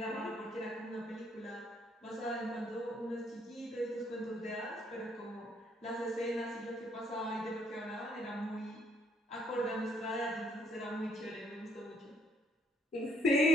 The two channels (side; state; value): both; normal; correlation 0.69